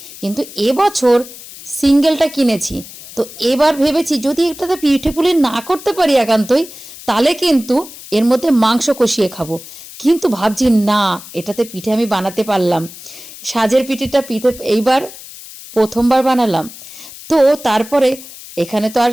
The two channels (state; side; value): noise; left; hiss, 16 dB below the sound